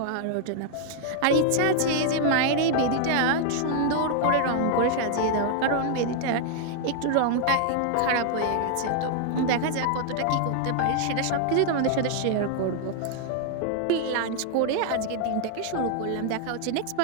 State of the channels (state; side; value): different; both; correlation 0.00